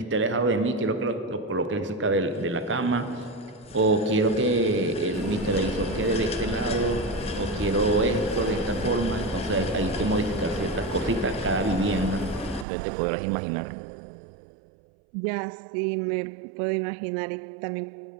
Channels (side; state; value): left; drops out; at 12.7 s